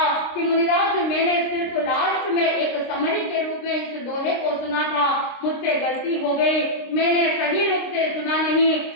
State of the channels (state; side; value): late; right; 26 ms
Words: कि मुनिराज, मैंने सिर्फ लास्ट में एक समरी के रूप में इस दोहे को सुना था, मुझसे गलती हो गई, मैंने सही रूप से सुना